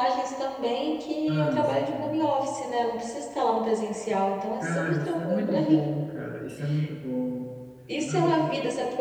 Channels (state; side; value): identical; both; correlation 1.00